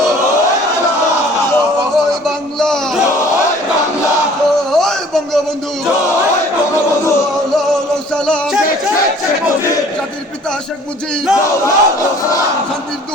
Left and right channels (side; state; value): both; normal; correlation 0.52